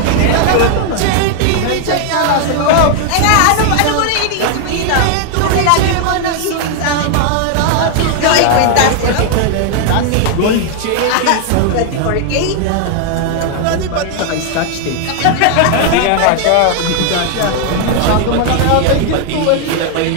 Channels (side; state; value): both; different; correlation 0.00